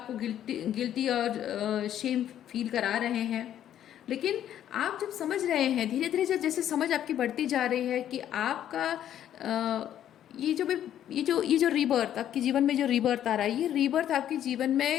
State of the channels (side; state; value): right; quieter; 10.9 dB